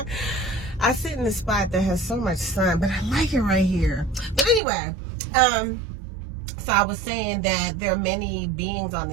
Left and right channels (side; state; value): left; drops out; at 4.6 s